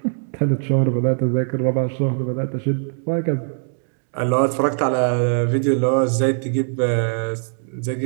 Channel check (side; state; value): left; silent; digital silence